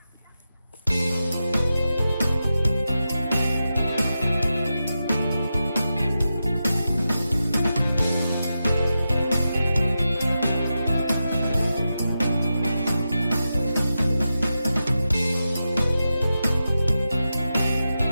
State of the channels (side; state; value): both; inverted; correlation -0.90